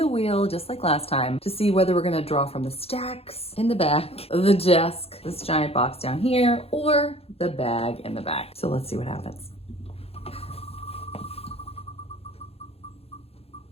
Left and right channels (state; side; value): late; right; 0.29 ms